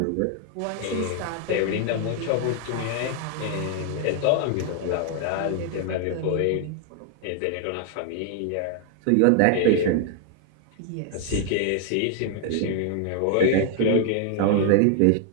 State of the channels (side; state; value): both; different; correlation 0.00